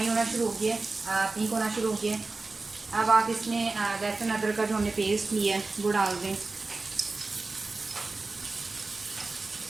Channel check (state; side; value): quieter; left; 3.6 dB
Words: होना शुरू हो गया है, पिंक होना शुरू हो गया है। अब आप इसमें लहसुन अदरक का जो हमने पेस्ट लिया है वो डाल दें।